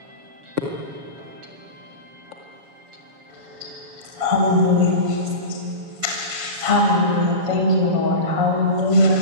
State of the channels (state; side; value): late; left; 7.2 ms